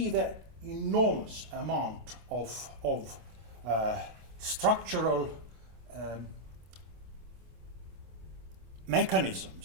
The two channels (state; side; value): late; left; 27 ms